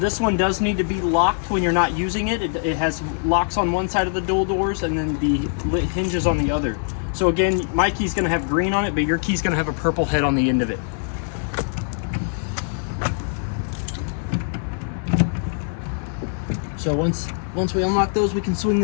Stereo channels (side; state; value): right; silent; digital silence